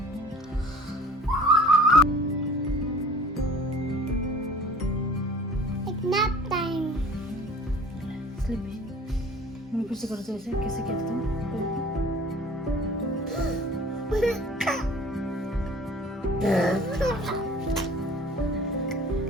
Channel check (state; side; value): normal; both; correlation 0.46